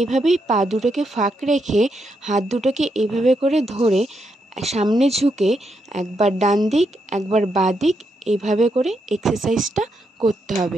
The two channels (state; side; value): normal; both; correlation 0.81